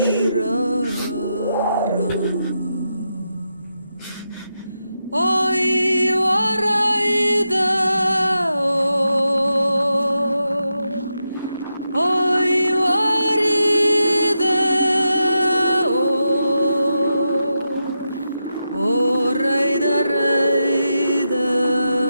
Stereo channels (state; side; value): inverted; both; correlation -0.86